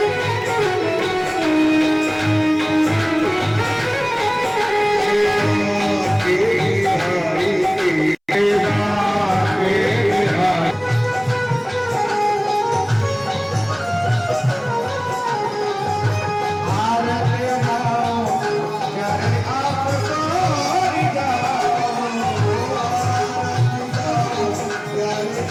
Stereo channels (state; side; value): identical; both; correlation 1.00